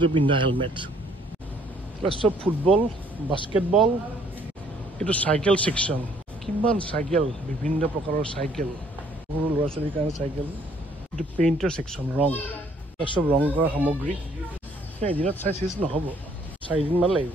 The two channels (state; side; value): normal; both; correlation 0.63